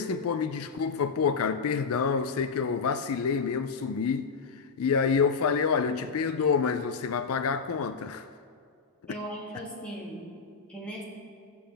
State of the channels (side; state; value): right; quieter; 5.3 dB